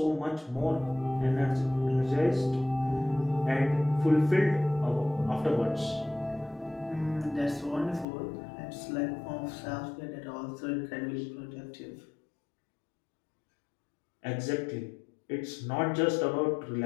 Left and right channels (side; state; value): right; drops out; at 8.1 s